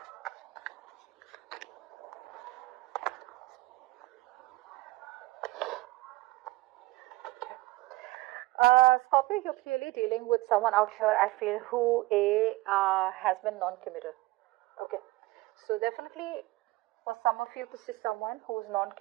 Scorpio, you're clearly dealing with someone out here, I feel, who has been non-committal. Okay. So definitely for some of you, this is someone who's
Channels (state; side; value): quieter; left; 20.0 dB